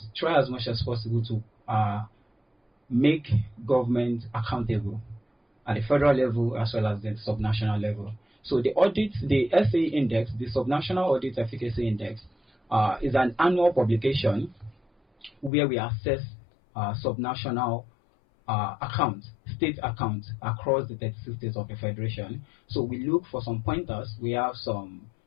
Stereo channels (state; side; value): drops out; right; at 15.5 s